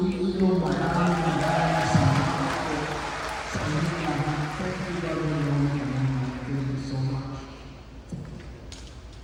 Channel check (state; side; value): identical; both; correlation 1.00